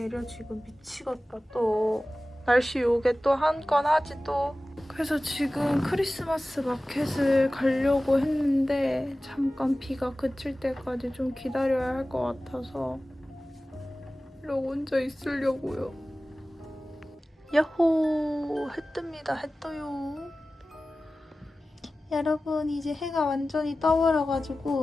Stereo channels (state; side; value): normal; both; correlation 0.96